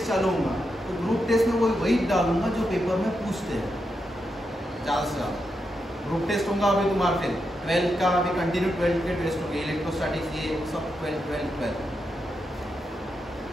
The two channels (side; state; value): both; normal; correlation 0.85